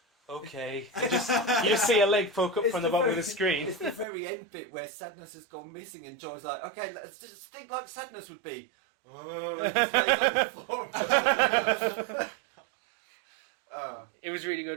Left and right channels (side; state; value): left; drops out; at 4.0 s